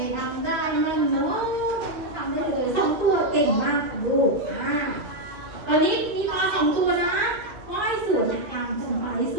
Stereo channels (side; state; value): left; late; 2.5 ms